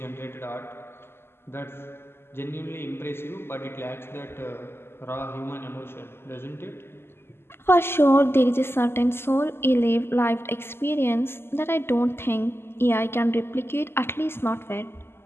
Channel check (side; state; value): right; late; 0.12 ms